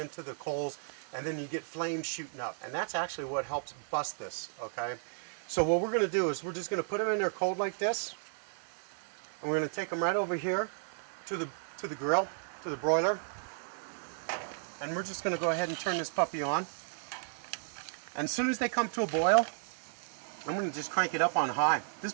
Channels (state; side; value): silent; left; 55 dB below the other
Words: the coals, and then you get flames shooting up. And that's actually what helps bust this, okay? So what we're going to do is we're just going to put them in there cold like this, and we're going to take them right over here to the grill, to the broiler, and we're just going to go ahead and turn this puppy on. And as soon as they come to a boil, I'm going to just crank it up on high. This